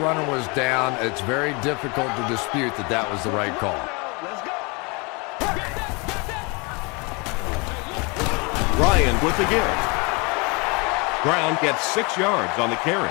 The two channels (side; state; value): right; quieter; 29.6 dB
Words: was down. It's very difficult to dispute that that was the right call. Ryan with the give. Brown gets 6 yards on the carry.